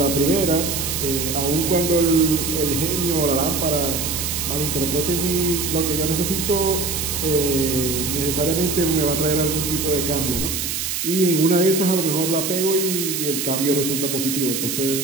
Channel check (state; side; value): noise; right; hiss, 2 dB below the sound